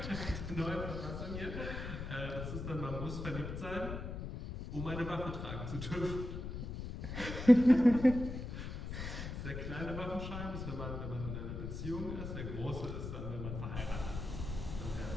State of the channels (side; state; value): left; noise; rumble, 6 dB below the sound